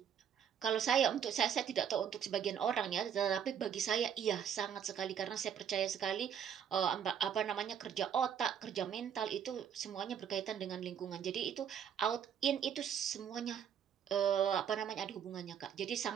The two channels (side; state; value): left; quieter; 8.5 dB